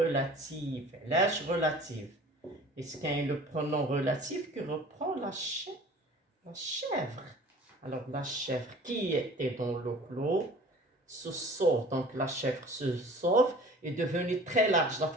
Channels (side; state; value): both; normal; correlation 0.46